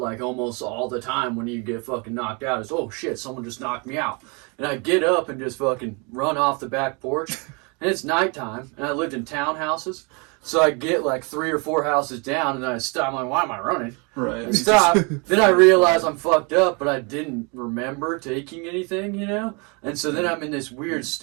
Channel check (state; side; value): quieter; left; 31.9 dB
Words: almost all the time when you get fucking knocked out, is, oh shit, someone just knocked me out. And I get up and just fucking run off the back porch. And it's nighttime, and I lived in townhouses. So I get like 3 or 4 houses down, and then I stop. I'm like, why am I running? Right. I stop. Then I realize I'm fucked up, but I didn't remember taking anything, you know? And so then I'm in this weird